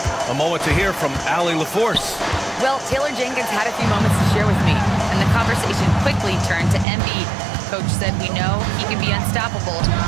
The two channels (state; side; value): drops out; left; at 6.9 s